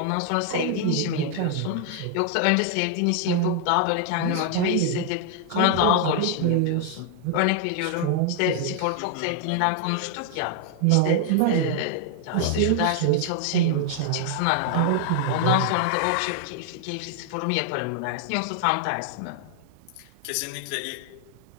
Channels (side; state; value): both; different; correlation 0.00